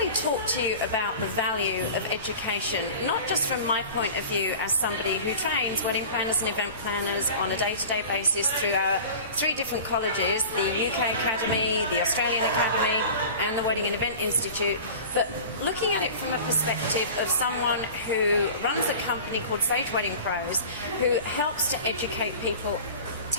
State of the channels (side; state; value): both; inverted; correlation -0.38